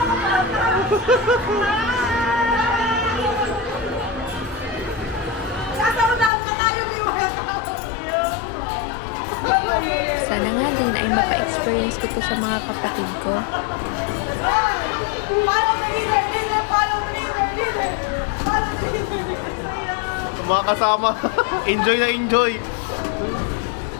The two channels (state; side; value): drops out; right; at 6.3 s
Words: Sana nga din ay mapa-experience ko to sa mga kapatid ko. Follow the leader! Follow the leader! mga kasama. Enjoy na enjoy.